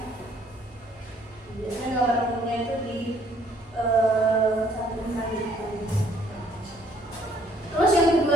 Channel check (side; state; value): both; normal; correlation 0.64